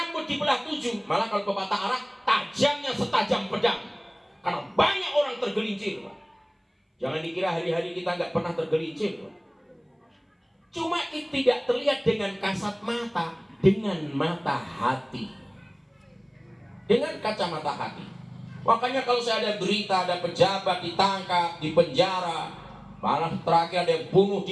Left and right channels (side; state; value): both; identical; correlation 1.00